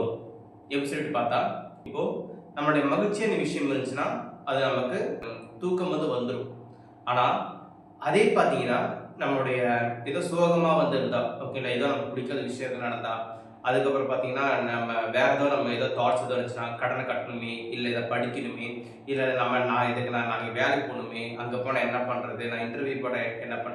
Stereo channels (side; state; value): both; identical; correlation 1.00